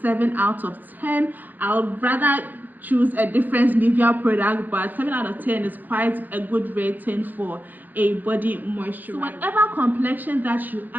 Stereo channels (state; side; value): late; left; 0.085 ms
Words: 7 out of 10. I would rather choose a different Nivea product, but 7 out of 10 is quite a good rating for a body moisturizer. So whatever complexion that you